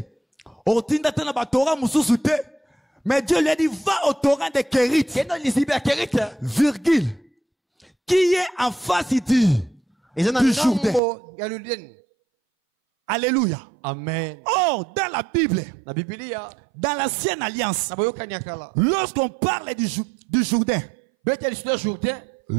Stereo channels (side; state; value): left; drops out; at 11.0 s